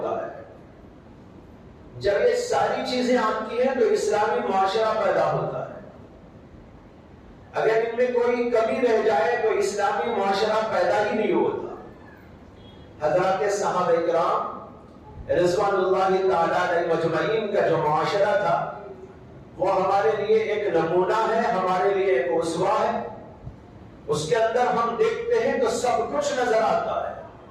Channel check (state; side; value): identical; both; correlation 1.00